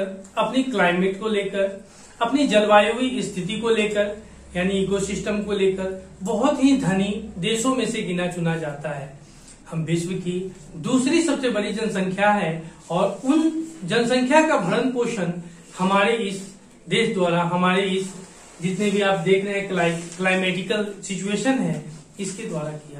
अपनी क्लाइमेट को लेकर, अपनी जलवायु स्थिति को लेकर, यानी इकोसिस्टम को लेकर बहुत ही धनी देशों में से गिना चुना जाता है। हम विश्व की दूसरी सबसे बड़ी जनसंख्या है और उन जनसंख्या का भरण पोषण हमारे इस देश द्वारा, हमारे इस जितने भी आप देख रहे हैं क्लाइमेटिकल सिचुएशन है, इसके द्वारा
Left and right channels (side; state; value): both; identical; correlation 1.00